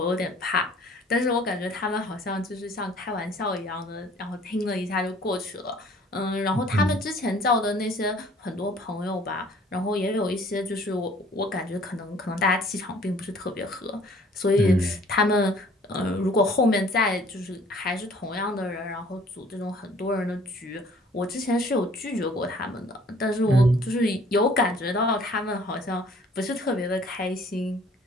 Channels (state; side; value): normal; both; correlation 0.55